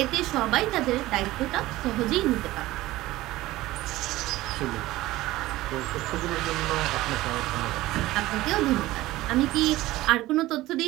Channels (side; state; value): left; quieter; 17.3 dB